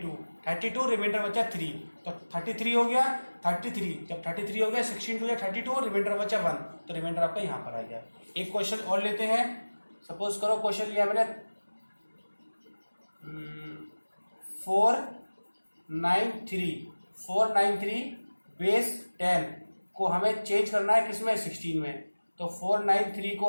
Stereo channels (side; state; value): both; inverted; correlation -1.00